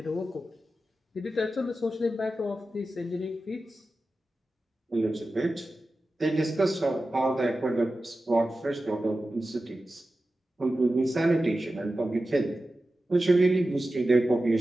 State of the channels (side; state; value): both; normal; correlation 0.93